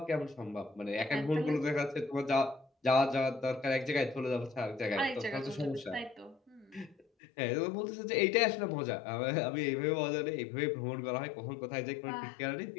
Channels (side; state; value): right; drops out; at 7.1 s